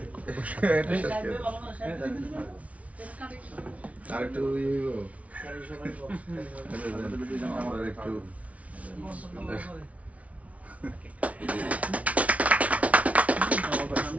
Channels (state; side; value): late; left; 0.066 ms